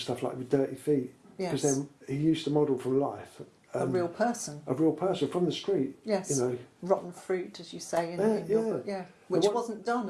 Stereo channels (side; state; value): both; identical; correlation 1.00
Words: stuff like with dirty feet. Yes. Because then he used to model from life. A real person. A real person from the street. Yes. Rotten fruit, as you say in your book. Yeah. Which wasn't done